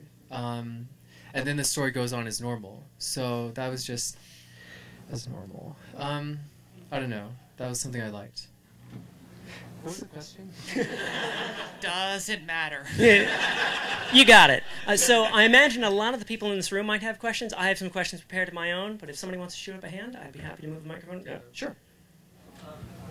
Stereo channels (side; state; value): both; identical; correlation 1.00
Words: And then the story goes on as normal. So that was just as normal. I don't know. That was something I liked. What was the question? Doesn't matter. You got it. So I imagine a lot of the people in this room might have questions. I have some questions prepared of my own, but if somebody wants to shoot up a hand, I'd be happy to move the microphone. Yeah, sure.